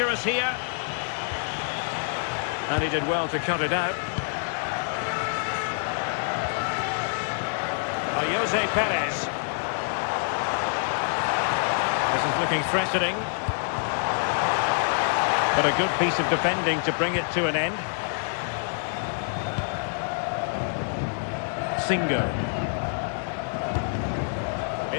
here. And he did well to cut it out. Jose Perez. This is looking threatening. But a good piece of defending to bring it to an end. Singo.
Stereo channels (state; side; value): silent; right; digital silence